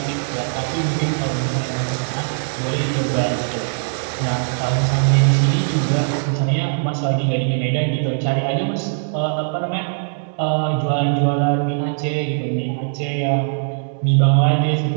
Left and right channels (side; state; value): left; silent; digital silence